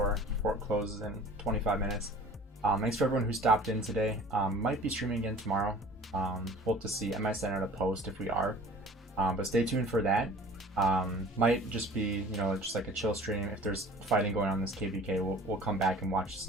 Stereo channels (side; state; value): both; normal; correlation 0.45